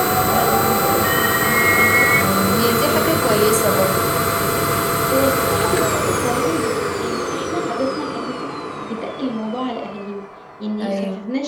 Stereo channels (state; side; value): identical; both; correlation 1.00